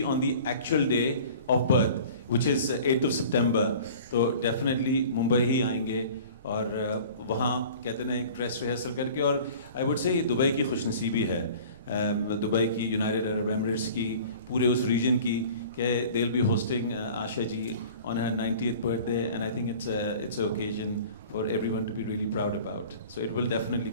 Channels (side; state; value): both; inverted; correlation -0.44